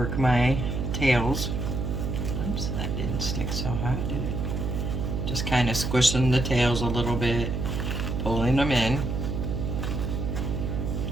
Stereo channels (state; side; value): noise; right; hum, 2 dB below the sound